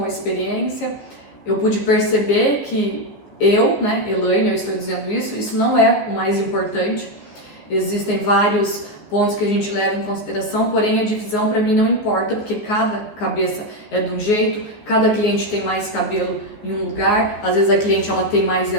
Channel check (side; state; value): right; late; 15 ms